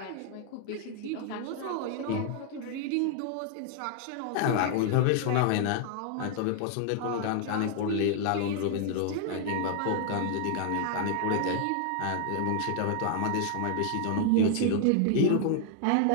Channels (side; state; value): both; different; correlation 0.00